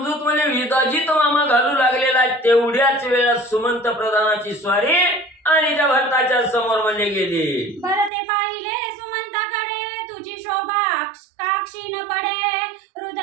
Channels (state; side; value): drops out; left; at 8.1 s